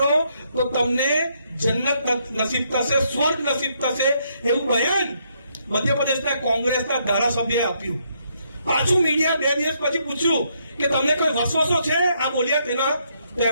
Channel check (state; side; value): inverted; both; correlation -0.74